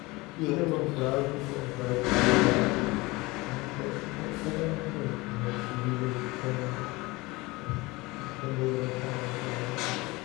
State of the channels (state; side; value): quieter; right; 22.7 dB